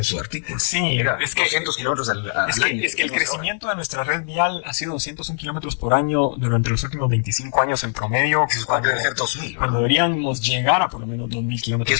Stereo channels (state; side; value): silent; right; 65 dB below the other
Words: su artículo. Sí, es que 200 kilómetros al año. Es que el crecimiento de nuestra red vial ha sido 201 kilómetros por año durante los últimos 25 años en promedio. Cuando debe ser 2000. Cuando deberíamos llegar a por lo menos 2000